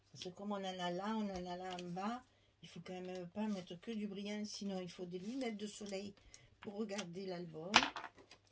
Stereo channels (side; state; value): both; identical; correlation 1.00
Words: Parce que comme on en a là, on en a là en bas, il faut quand même pas mettre que du brillant, sinon il faut des lunettes de soleil pour regarder l'album.